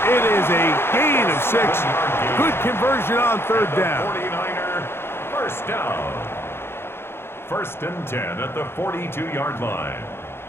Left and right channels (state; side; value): late; right; 0.11 ms